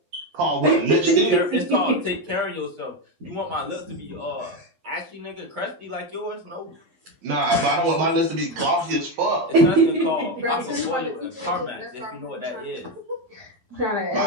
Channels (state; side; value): late; left; 12 ms